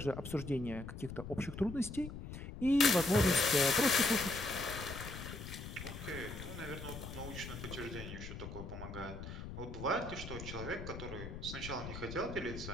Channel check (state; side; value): noise; left; rumble, 9 dB below the sound